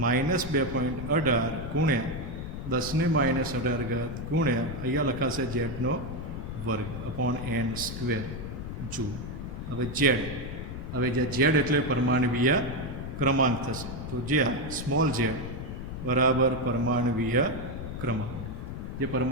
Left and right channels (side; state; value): left; noise; rumble, 7 dB below the sound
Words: -2.18 ગુણ્યા 10⁻18 ગુણ્યા અહીંયા લખાશે ઝેડનો વર્ગ અપોન n સ્ક્વેર જૂલ. હવે ઝેડ એટલે પરમાણવીય ક્રમાંક થશે. તો જ્યાં સ્મોલ ઝેડ બરાબર પરમાણવીય ક્રમાંક, જે